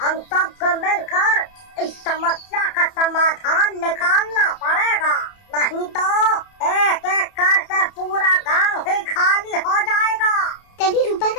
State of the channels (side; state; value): right; late; 30 ms